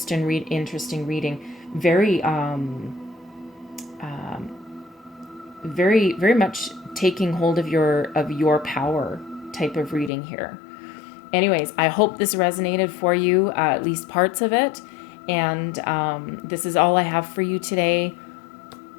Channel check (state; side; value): drops out; right; at 10.1 s